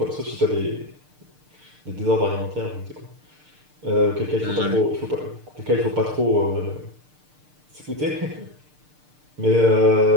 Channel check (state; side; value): late; left; 6.6 ms